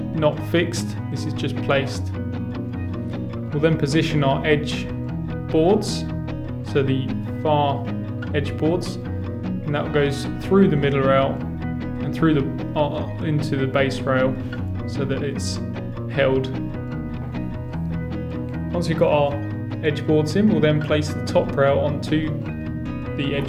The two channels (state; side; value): identical; both; correlation 1.00